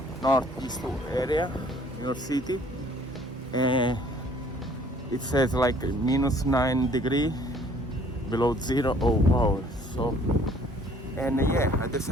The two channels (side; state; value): both; normal; correlation 0.57